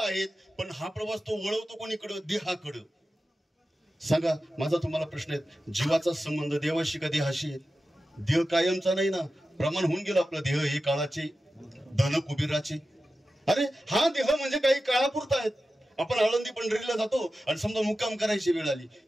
आहे, पण हा प्रवास तो वळवतो कोणीकडे? देहाकडे. सांगा, माझा तुम्हाला प्रश्न आहे, जीवाचा संबंध देवाशी का देहाशी आहे? देह कायमचा नाही ना, प्रमाण होऊन गेलं आपलं. देह हे काळाचे, धन कुबेराचे. अरे हा देह म्हणजे काही काळापुरता आहेत. आपण आळंदी पंढरीला जातो आणि समजा मुक्काम करायची वेळ आली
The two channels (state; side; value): normal; both; correlation 0.93